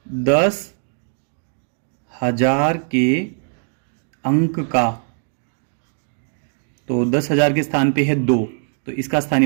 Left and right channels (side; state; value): left; silent; 56 dB below the other